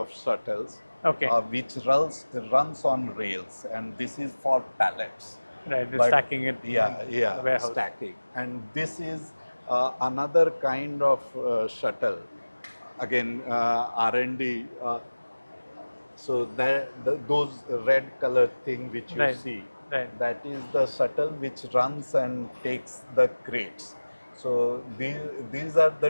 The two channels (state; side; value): inverted; both; correlation -1.00